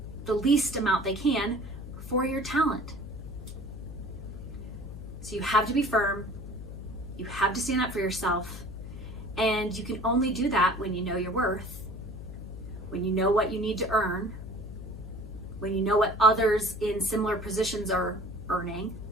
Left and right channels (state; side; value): noise; left; hum, 11 dB below the sound